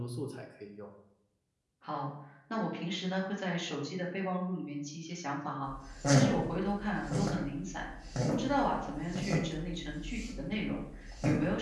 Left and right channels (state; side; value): identical; both; correlation 1.00